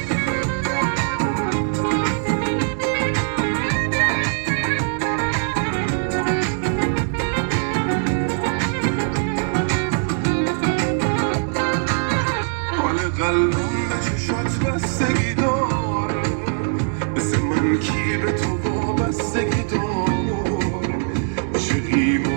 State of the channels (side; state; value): left; silent; 65 dB below the other